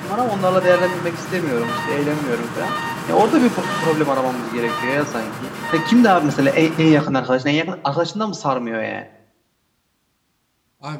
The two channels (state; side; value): identical; both; correlation 1.00